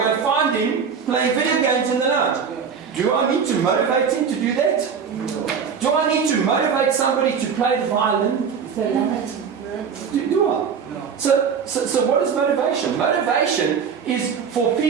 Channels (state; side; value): quieter; left; 6.6 dB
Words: and find him playing video games in the night? Do I need to motivate him to do that? Do I need to motivate somebody to play the violin if they love it? Do I? So what is motivation? Motivation is for